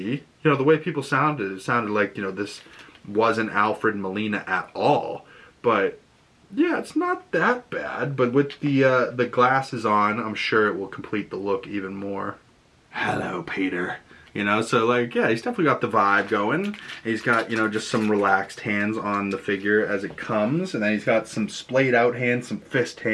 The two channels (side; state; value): both; identical; correlation 1.00